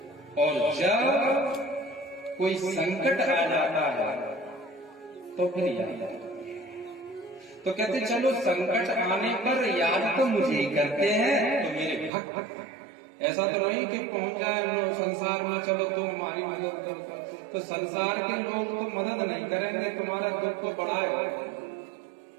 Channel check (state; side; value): drops out; left; at 12.1 s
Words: और जब कोई संकट आ जाता है तो फिर याद। तो कहते चलो संकट आने पर याद तो मुझे ही करते हैं, तो मेरे भक्त। ऐसा तो नहीं कि पहुंच जाए संसार में, चलो तुम हमारी मदद करो, तो संसार के लोग तो मदद नहीं करेंगे, तुम्हारा दुख को बढ़ाए,